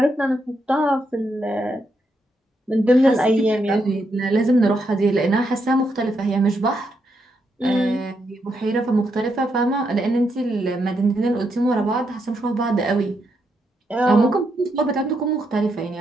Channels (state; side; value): normal; both; correlation 0.80